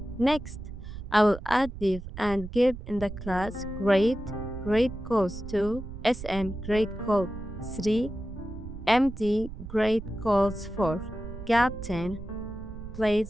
Next, I will add div and give in the class grade calls 2, SM grade call 3, MD grade calls 4, gap 10,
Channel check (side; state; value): right; noise; rumble, 11 dB below the sound